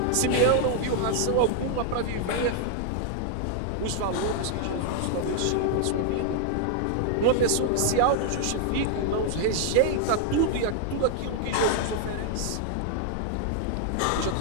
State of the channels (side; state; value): both; different; correlation 0.00